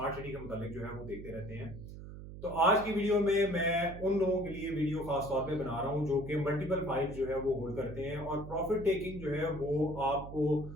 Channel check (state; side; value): noise; right; hum, 12 dB below the sound